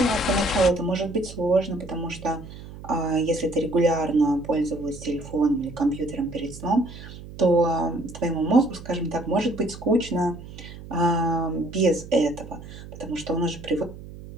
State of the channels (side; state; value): right; noise; hum, 14 dB below the sound